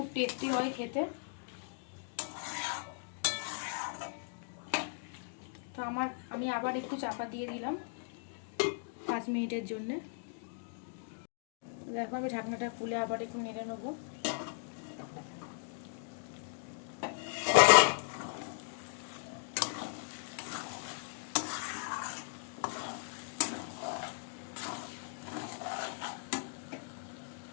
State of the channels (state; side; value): silent; right; digital silence